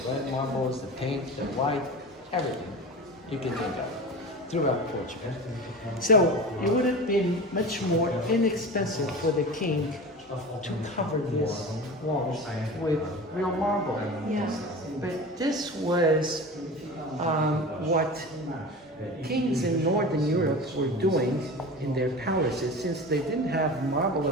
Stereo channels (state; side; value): normal; both; correlation 0.32